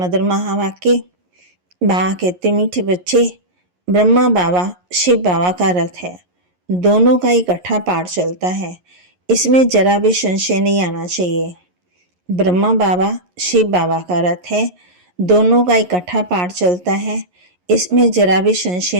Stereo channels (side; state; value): left; late; 11 ms